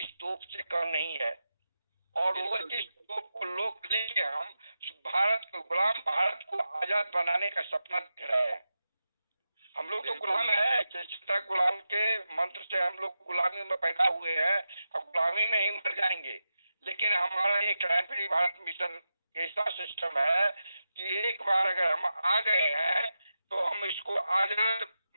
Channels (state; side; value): inverted; both; correlation -0.90